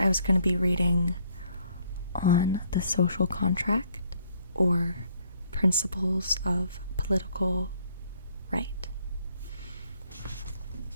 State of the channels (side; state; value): both; inverted; correlation -0.66